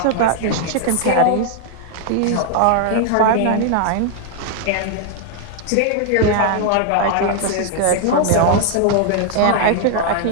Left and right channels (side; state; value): both; different; correlation 0.00